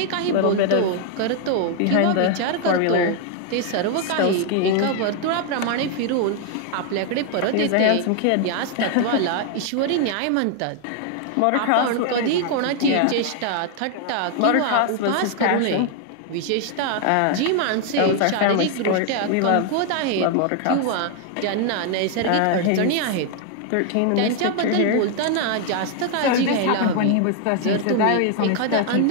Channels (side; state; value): both; different; correlation 0.00